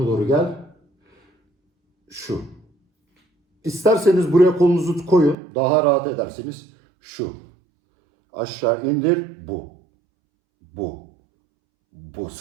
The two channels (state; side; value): drops out; left; at 5.4 s